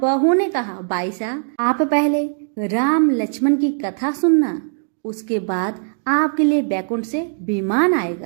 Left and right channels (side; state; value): left; silent; digital silence